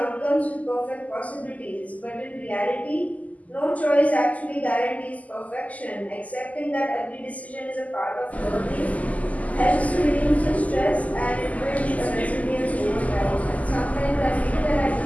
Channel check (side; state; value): right; late; 0.074 ms